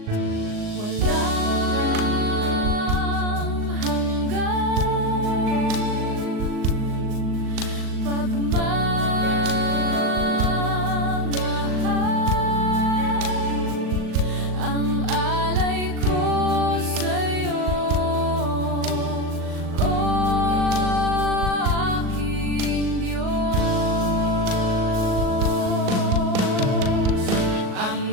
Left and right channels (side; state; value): left; late; 38 ms